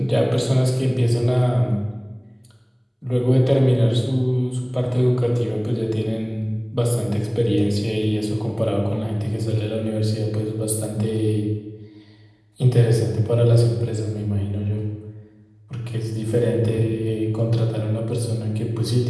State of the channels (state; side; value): identical; both; correlation 1.00